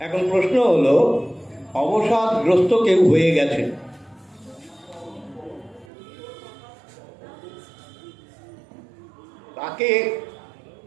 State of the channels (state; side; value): drops out; left; at 5.9 s